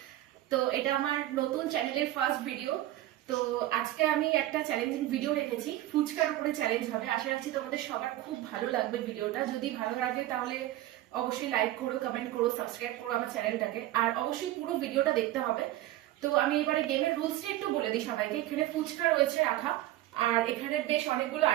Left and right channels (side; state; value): left; quieter; 15.0 dB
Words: তো এটা আমার নতুন চ্যানেলের ফার্স্ট ভিডিও। তো আজকে আমি একটা চ্যালেঞ্জিং ভিডিও রেখেছি, ফুচকার উপরে চ্যালেঞ্জ হবে। আশা রাখছি তোমাদের সবার খুব ভালো লাগবে ভিডিওটা। যদি ভালো লাগে তাহলে অবশ্যই লাইক করো, কমেন্ট করো, সাবস্ক্রাইব করো আমার চ্যানেলটাকে, আর অবশ্যই পুরো ভিডিওটা দেখতে হবে। তো আমি এবারে গেমের রুলসটা একটু বলে দিই সবাইকে। এখানে ফুচকা রয়েছে রাখা, আর এখানে বেশ অনেকগুলো